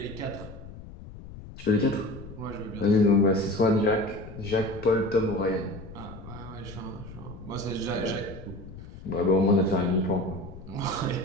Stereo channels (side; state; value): left; noise; rumble, 14 dB below the sound